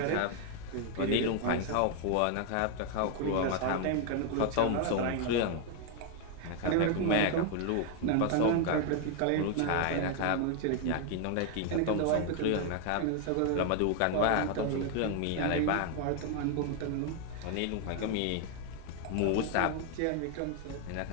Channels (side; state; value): both; different; correlation 0.00